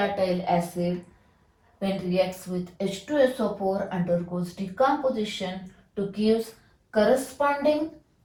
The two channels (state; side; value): identical; both; correlation 1.00